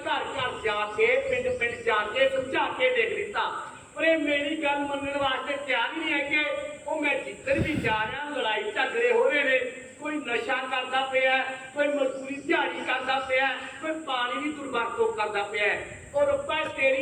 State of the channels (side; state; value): both; identical; correlation 1.00